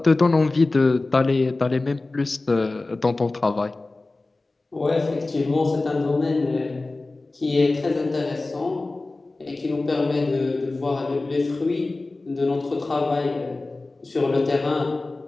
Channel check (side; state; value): right; quieter; 3.2 dB